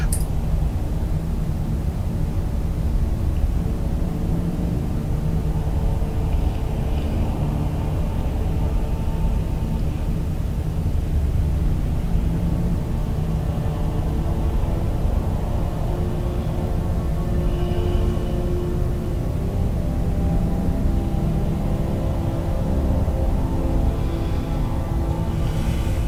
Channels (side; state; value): both; identical; correlation 1.00